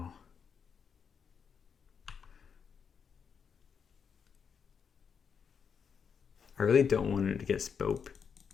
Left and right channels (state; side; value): quieter; right; 6.6 dB